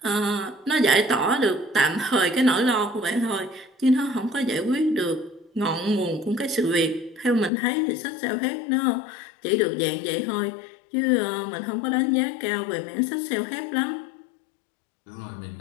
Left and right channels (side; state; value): right; drops out; at 7.5 s